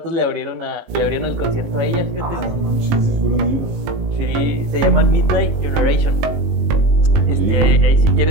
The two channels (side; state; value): left; late; 19 ms